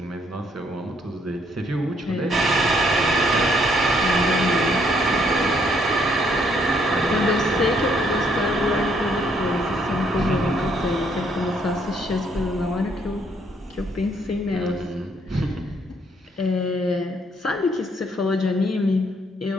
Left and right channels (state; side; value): normal; both; correlation 0.69